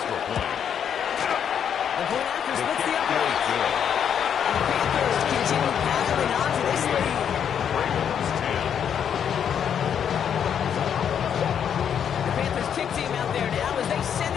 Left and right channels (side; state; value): right; quieter; 8.3 dB